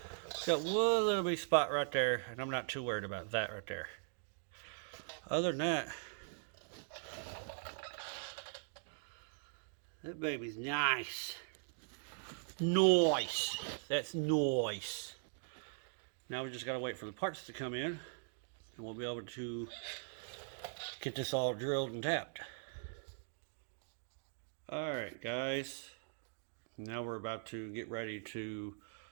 got one little bitty spot right there, and I'm not too worried about that right there. Other than that baby's nice. Nice. That's nice. Now we just gotta wait for the parts to come in, and we'll be able to get this all drilled and tapped. Alright guys, now we're about to get ready to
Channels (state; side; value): silent; left; digital silence